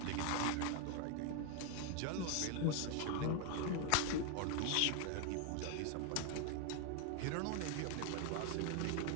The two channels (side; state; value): both; different; correlation 0.01